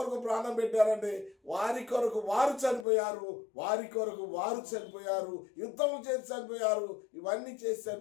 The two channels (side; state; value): right; drops out; at 2.9 s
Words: ప్రాణం పెట్టారంటే, వారి కొరకు వారు చనిపోయారు, వారి కొరకు వారు చనిపోయారు, యుద్ధం చేసి చనిపోయారు, ఇవన్నీ చేసి